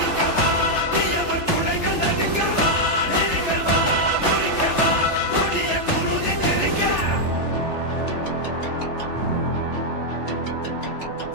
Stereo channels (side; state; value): right; late; 3.4 ms